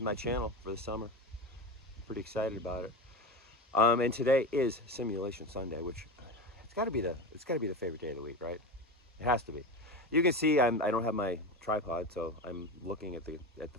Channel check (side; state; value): both; normal; correlation 0.24